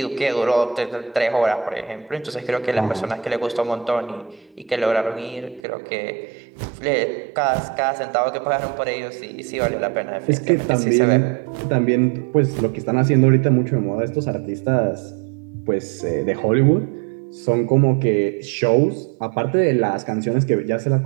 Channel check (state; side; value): drops out; left; at 5.6 s